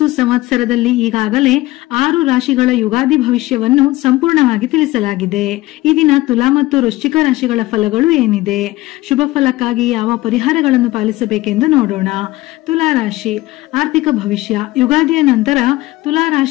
ಸಂವತ್ಸರದಲ್ಲಿ ಈಗಾಗಲೇ 6 ರಾಶಿಗಳ ಯುಗಾದಿ ಭವಿಷ್ಯವನ್ನು ಸಂಪೂರ್ಣವಾಗಿ ತಿಳಿಸಲಾಗಿದೆ. ಈ ದಿನ ತುಲಾ ಮತ್ತು ವೃಶ್ಚಿಕ ರಾಶಿಗಳ ಫಲಗಳು ಏನಿದೆ, ಶುಭ ಫಲಕ್ಕಾಗಿ ಯಾವ ಪರಿಹಾರಗಳನ್ನು ಪಾಲಿಸಬೇಕೆಂದು ನೋಡೋಣ. ತುಲಾ ರಾಶಿ ಆರ್ಥಿಕ ಭವಿಷ್ಯ. ಯುಗಾದಿಯ ನಂತರ ತುಲಾ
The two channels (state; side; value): quieter; right; 18.5 dB